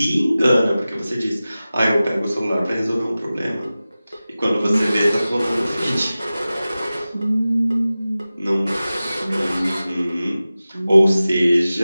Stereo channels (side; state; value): both; inverted; correlation -0.96